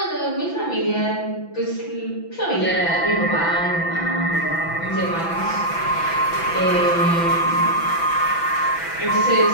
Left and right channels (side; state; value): right; late; 6.0 ms